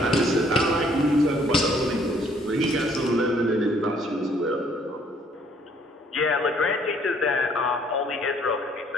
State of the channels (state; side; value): normal; both; correlation 0.63